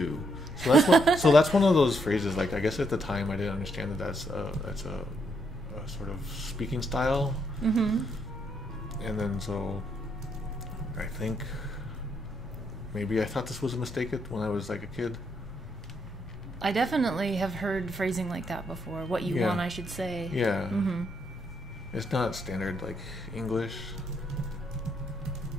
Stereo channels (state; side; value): normal; both; correlation 0.76